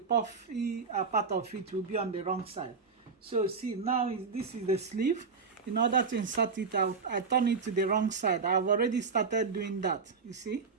part of it, will be on the wrong side. So see, now this is the sleeve. In order to insert it, I turn it to the wrong side. I've already started doing that. You see,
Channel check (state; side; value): quieter; left; 5.0 dB